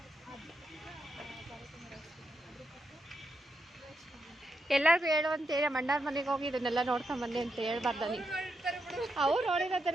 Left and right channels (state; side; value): normal; both; correlation 0.84